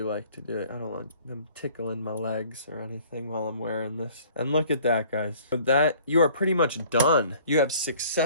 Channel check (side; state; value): both; inverted; correlation -0.53